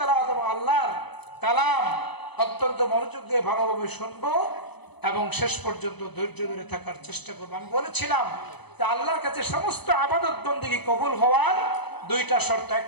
এবং আল্লাহর কালাম অত্যন্ত মনোযোগ দিয়ে ভালোভাবে শুনবো এবং শেষ পর্যন্ত ধৈর্য ধরে থাকার চেষ্টা করবো। আমি বলেছিলাম যে আল্লাহর কাছে সমস্ত ইবাদত বন্দেগী কবুল হওয়ার দুইটা শর্ত,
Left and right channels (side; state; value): right; late; 0.99 ms